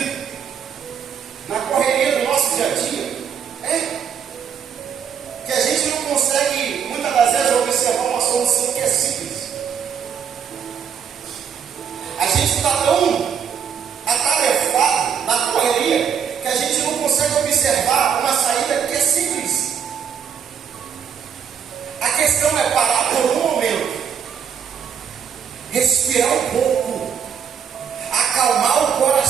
na correria do nosso dia a dia, que a gente não consegue, muitas das vezes, observar uma solução que é simples. A gente está tão atarefado na correria que a gente não consegue observar uma saída que é simples. A questão é parar por um momento, respirar um pouco, acalmar o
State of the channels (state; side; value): quieter; left; 7.7 dB